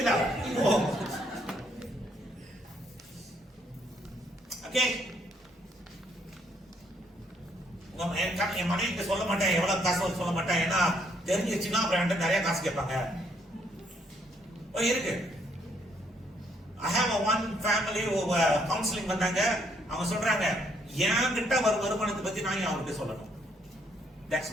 ஓகே, என் மனைவிக்கு சொல்ல மாட்டேன் எவ்வளவு காசு சொல்ல மாட்டேன், ஏன்னா தெரிஞ்சிச்சுன்னா அப்புறம் நிறைய காசு கேட்பாங்க. இருக்கு. I have one family counseling வந்தாங்க. அவங்க சொல்றாங்க என்கிட்ட வருமானத்தை பத்தி நான் அவர்கிட்ட சொல்லணும். That's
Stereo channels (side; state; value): both; normal; correlation 0.69